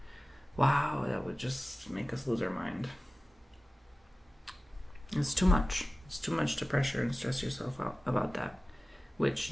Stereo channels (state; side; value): normal; both; correlation 0.97